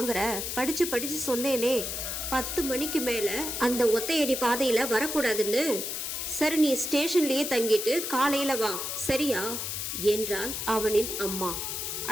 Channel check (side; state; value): left; noise; hiss, 4 dB below the sound